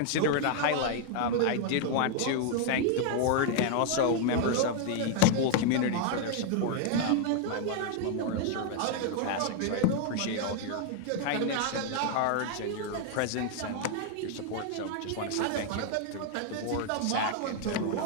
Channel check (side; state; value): both; different; correlation 0.00